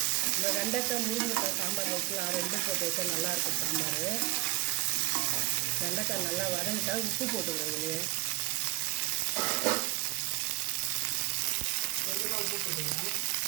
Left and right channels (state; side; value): quieter; left; 21.9 dB